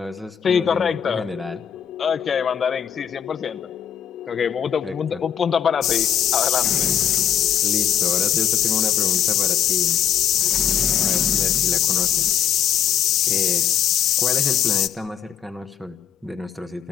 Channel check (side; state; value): right; quieter; 9.1 dB